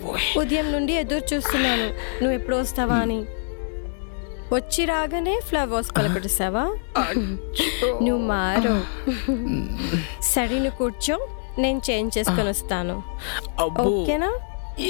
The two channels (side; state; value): right; silent; 62 dB below the other